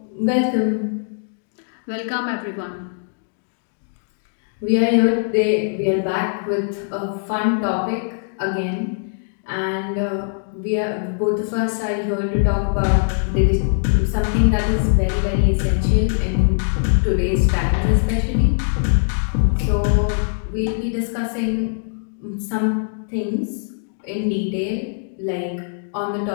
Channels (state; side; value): silent; right; digital silence